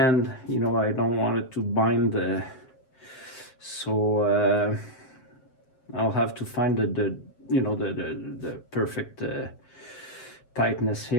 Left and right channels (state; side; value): late; right; 7.7 ms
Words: You know, I don't want it to bind so I'll have to find the you know the perfect tightness